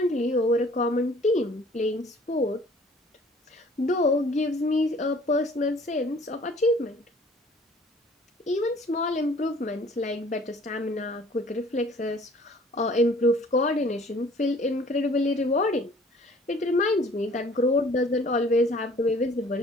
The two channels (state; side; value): normal; both; correlation 0.54